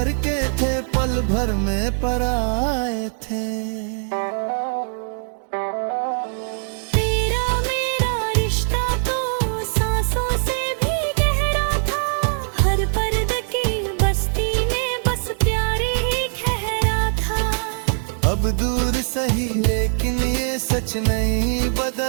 के थे पल भर में पराए थे। तेरा मेरा रिश्ता तो सांसों से भी गहरा था, हर पर्द की बस्ती में बस प्यार ही ठहरा था। अब दूर सही लेकिन ये सच नहीं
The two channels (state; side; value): silent; left; digital silence